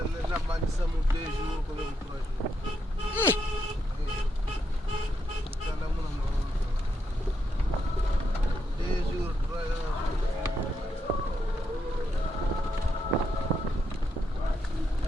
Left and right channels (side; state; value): both; normal; correlation 0.80